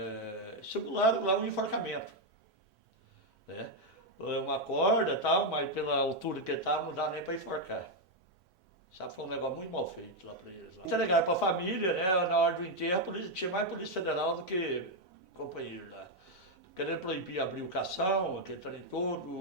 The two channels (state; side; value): normal; both; correlation 0.02